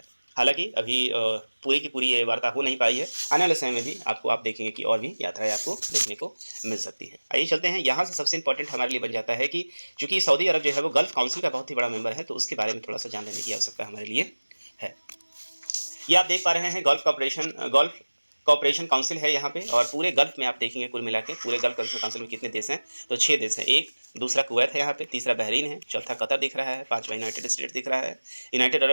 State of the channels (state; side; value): inverted; both; correlation -1.00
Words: हालांकि अभी पूरी की पूरी ये वार्ता हो नहीं पाई है, आने वाले समय में भी आप देखेंगे कि और भी यात्राएं आपको देखने को मिल सकती है। आइए चलते हैं, यहाँ से सबसे इंपॉर्टेंट हमारे लिए बन जाता है कि चूँकि सऊदी अरब जो है वो गल्फ काउंसिल का बहुत ही बड़ा मेंबर है, तो उसके बारे में थोड़ा सा जान लेने की आवश्यकता हमारे लिए है। ये आप देख पा रहे हैं गल्फ कॉपरेशन काउंसिल है यहाँ पे और पूरे गल्फ में आप देखेंगे कुल मिला के पूरे गल्फ काउंसिल में कितने देश हैं, तो 6 देश हैं। एक दूसरा कुवैत है यहाँ पे, तीसरा बहरीन है, चौथा कतर दिख रहा है, 5वां यूनाइटेड स्टेट दिख रहा है, यूनाइटेड अरब